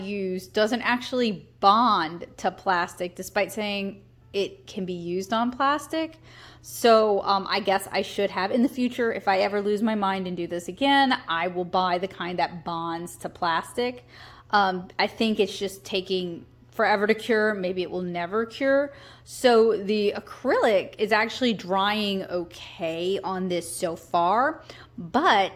doesn't actually bond to plastic, despite saying it can be used on plastic. So I guess I should have in the future, if I ever lose my mind and do this again, I will buy the kind that bonds to plastic. I think it's just taking forever to cure. Maybe it will never cure. So the acrylic is actually drying okay on this so far,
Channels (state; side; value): identical; both; correlation 1.00